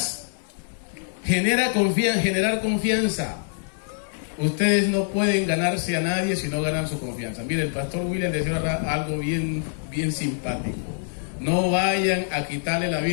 Generar confianza. Ustedes no pueden ganarse a nadie si no ganan su confianza. Mire, el pastor William decía algo bien simpático. No vayan a quitarle la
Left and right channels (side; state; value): right; silent; digital silence